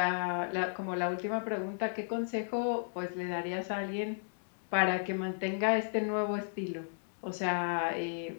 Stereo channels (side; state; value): right; silent; 55 dB below the other